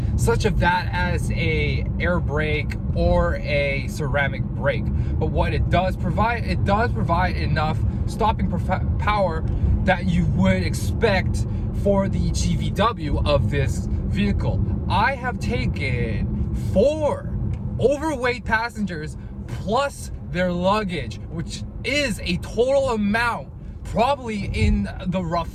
such of that as a air brake or a ceramic brake. But what it does provide enough stopping power that you would expect for the GVW of this vehicle. I have taken 4 overweight passengers plus their luggage, which is a total amount probably in the rough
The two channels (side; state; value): both; identical; correlation 1.00